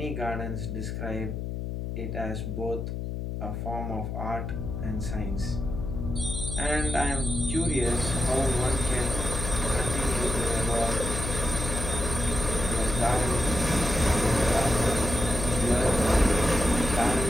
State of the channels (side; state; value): left; noise; hum, 4 dB below the sound